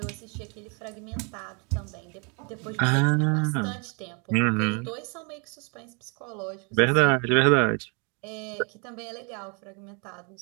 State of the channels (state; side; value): quieter; left; 34.8 dB